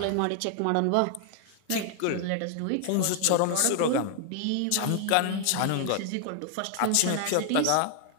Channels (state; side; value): different; both; correlation 0.00